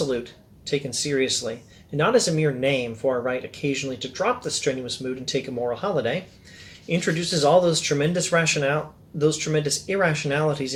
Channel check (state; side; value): identical; both; correlation 1.00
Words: taken seriously, and not as a mere name for a right occasionally to drop the strenuous mood and take a moral holiday, introduces all those tremendous irrationalities